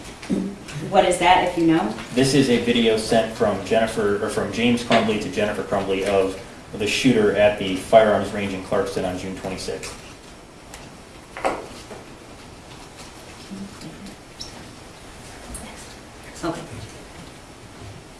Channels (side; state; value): both; identical; correlation 1.00